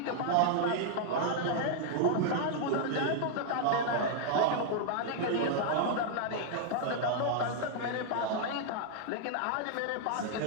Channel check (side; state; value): both; different; correlation -0.01